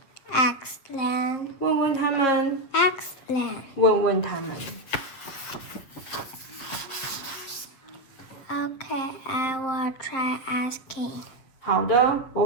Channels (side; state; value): right; late; 7.7 ms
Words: Ask them. 问问他们， Ask them. 问问他们。 Okay, I will try asking. 好的，